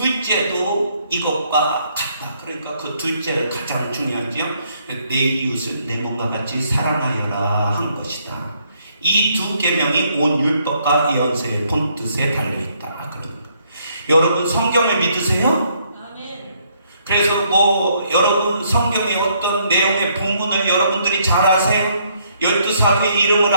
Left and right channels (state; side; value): inverted; both; correlation -0.70